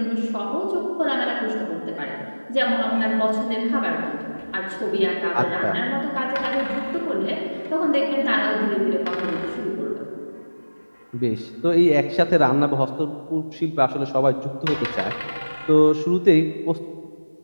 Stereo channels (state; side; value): inverted; both; correlation -1.00